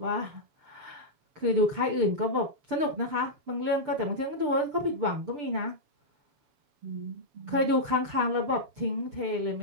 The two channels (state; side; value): late; left; 6.7 ms